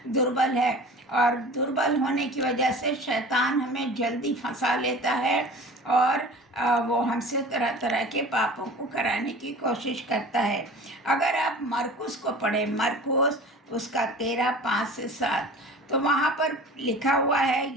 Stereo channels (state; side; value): normal; both; correlation 0.40